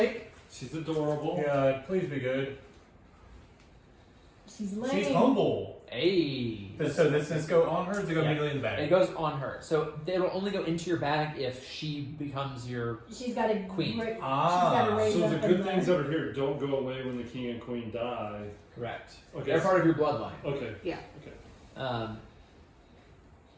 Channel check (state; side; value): identical; both; correlation 1.00